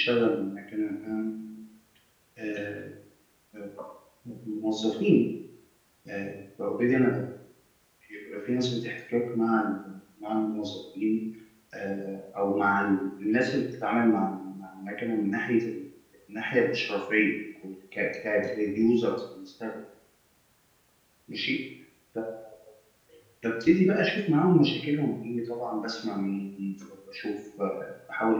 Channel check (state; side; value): identical; both; correlation 1.00